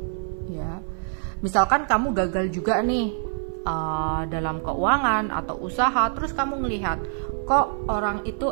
Ya, misalkan kamu gagal juga nih dalam keuangan atau usaha, terus kamu ngelihat kok orang itu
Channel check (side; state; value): left; silent; 56 dB below the other